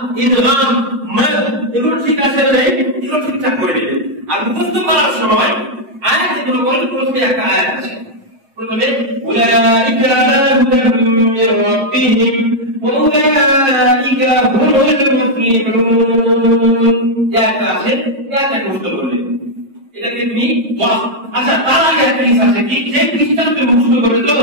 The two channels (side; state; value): left; late; 7.4 ms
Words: ইদগাম মাদ এগুলো ঠিক আছে না নেই, এগুলো ঠিকঠাক করে নেবে। আর মুখস্থ করার সময় আয়াত যেগুলো বলে প্রথমে একটা আয়াত আছে, প্রথমে উলাইকা আলা হুদাম মির রাব্বিহিম ওয়া উলাইকা হুমুল মুফলিহুন। একটা আছে, একটা মুখস্থ করলে এটাকে তুমি আচ্ছা তার আগে একটা জিনিস আছে কি, যে পৃষ্ঠা তুমি মুখস্থ করবে তো